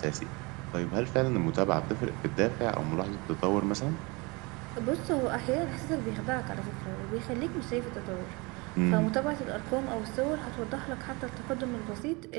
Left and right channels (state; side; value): quieter; left; 26.9 dB